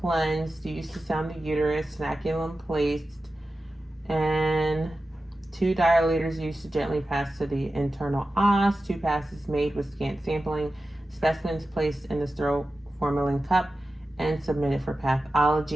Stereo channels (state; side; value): normal; both; correlation 0.93